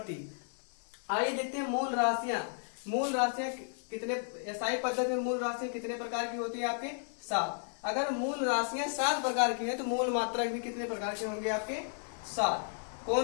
आइए देखते हैं मूल राशियां। मूल राशियां कितने एसआई पद्धति में मूल राशियां कितने प्रकार की होती है? आपके 7। अगर मूल राशियां 7 प्रकार की है तो मूल मात्रक भी कितने प्रकार के होंगे? आपके 7।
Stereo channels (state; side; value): silent; right; digital silence